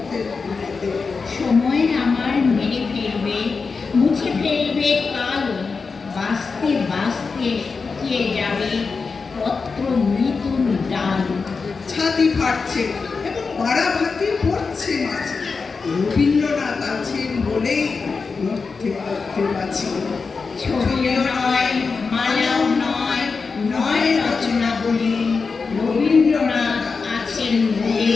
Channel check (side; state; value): right; quieter; 4.7 dB